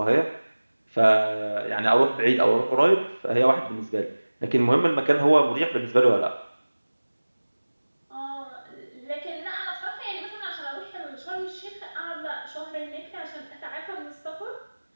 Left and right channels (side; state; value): both; inverted; correlation -1.00